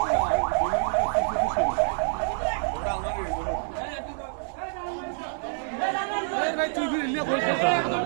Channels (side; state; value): left; silent; 60 dB below the other